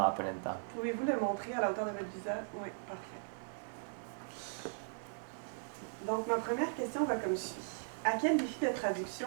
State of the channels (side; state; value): left; silent; digital silence